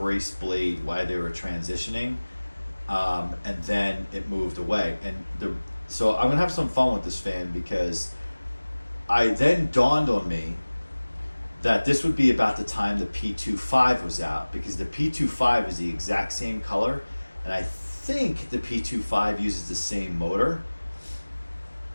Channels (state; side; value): inverted; both; correlation -1.00